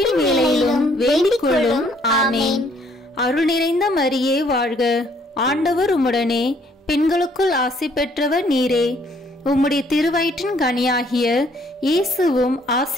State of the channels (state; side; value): normal; both; correlation 0.64